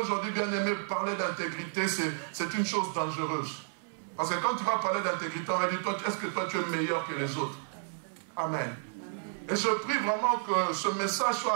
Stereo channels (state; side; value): silent; left; 57 dB below the other